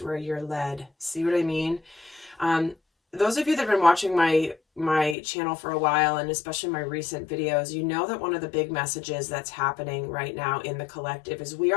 where you're led. See what I mean? Those of you that have been watching my channel for a while, and especially my recent videos, you know that one of the big messages that's happening right now in the collective is we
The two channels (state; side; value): drops out; right; at 5.2 s